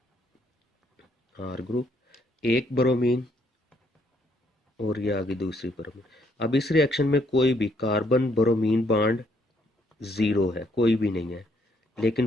आर ग्रुप, एक बोरोमीन और ये आगे दूसरी बोरोमीन। अब इस रिएक्शन में कोई भी कार्बन बोरोमीन बॉन्ड ज़ीरो है, कोई भी नहीं है, लेकिन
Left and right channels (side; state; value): both; normal; correlation 0.70